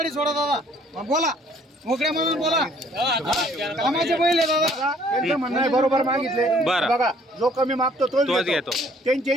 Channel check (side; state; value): both; normal; correlation 0.60